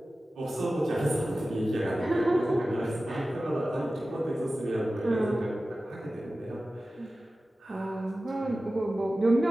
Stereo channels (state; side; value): normal; both; correlation 0.95